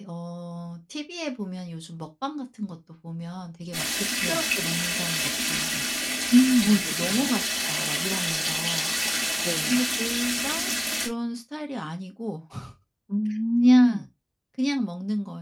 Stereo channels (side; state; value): both; identical; correlation 1.00